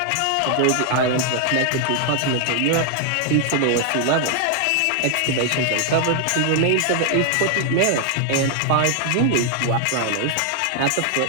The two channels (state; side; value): different; both; correlation 0.00